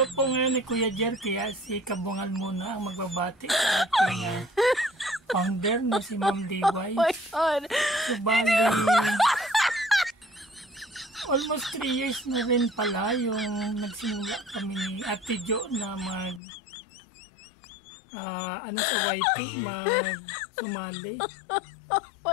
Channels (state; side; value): drops out; right; at 16.4 s